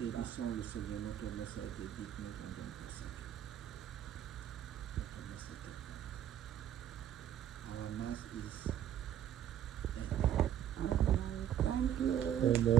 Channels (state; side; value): quieter; left; 10.5 dB